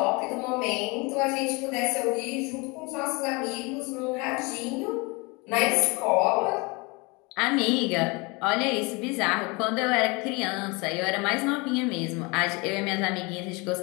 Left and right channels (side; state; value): right; quieter; 27.4 dB